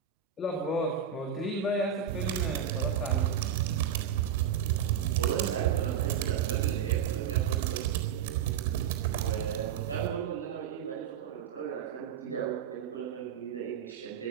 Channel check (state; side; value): quieter; left; 8.4 dB